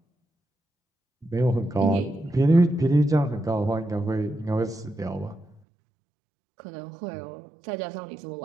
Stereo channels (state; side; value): drops out; left; at 5.6 s